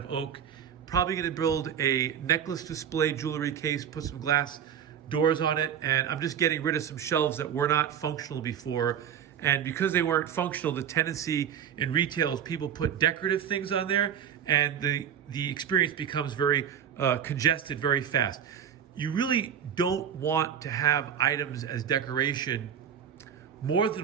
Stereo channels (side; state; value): left; quieter; 8.6 dB